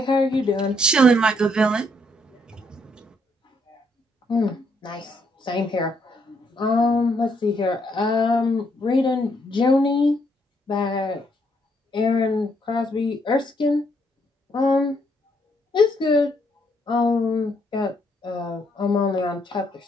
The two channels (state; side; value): normal; both; correlation 0.72